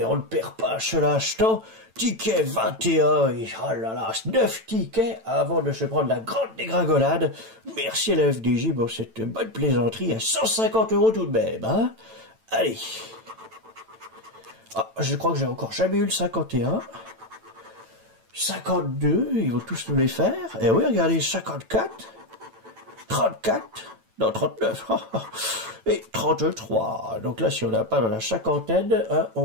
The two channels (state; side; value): late; left; 9.0 ms